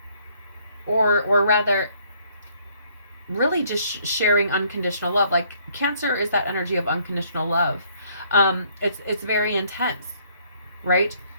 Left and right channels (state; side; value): inverted; both; correlation -0.64